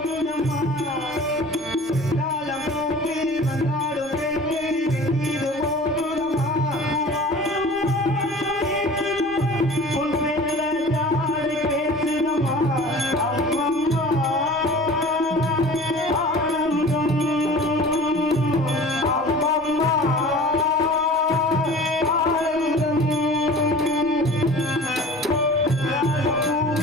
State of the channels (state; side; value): normal; both; correlation 0.42